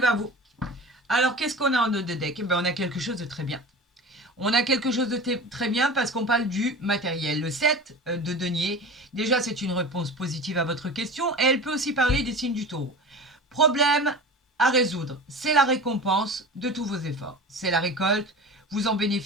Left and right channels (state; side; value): normal; both; correlation 0.33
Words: à vous. Alors, qu'est-ce qu'on a en dos de deck? Eh bien, on a quelque chose de très bien. On a quelque chose de très bien parce qu'on parle du matériel. Le 7 de denier, déjà, c'est une réponse positive à votre question. Et elle peut aussi parler des signes du taureau. Problème à résoudre, c'est la récompense de tous vos efforts. C'est la récolte, vous en